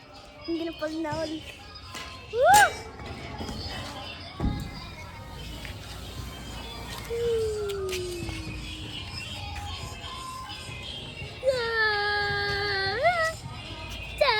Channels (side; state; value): both; identical; correlation 1.00